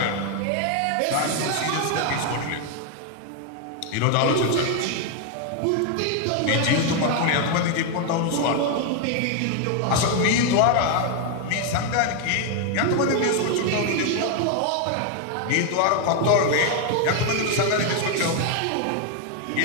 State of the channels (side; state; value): both; different; correlation 0.01